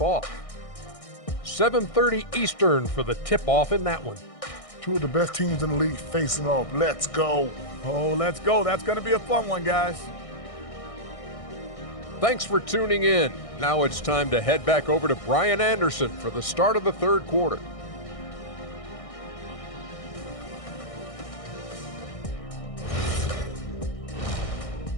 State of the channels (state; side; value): late; right; 1.6 ms